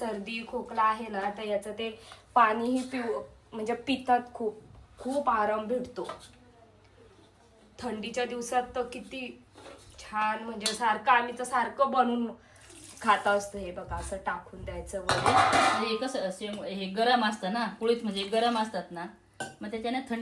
खोकला आहे ना तर याचं ते पाणीही म्हणजे पितात खूप खूप आराम भेटतो. थंडीच्या दिवसात तर किती छान म्हणजे सारखं आम्ही तर सारखं बनवून खात असतो. हे बघा असं टाकून द्यायचं वगैरे. हे कसं हे गरम असतं ना, कुळीत म्हणजे गरम असतात ना, मग त्याच्याने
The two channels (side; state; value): both; identical; correlation 1.00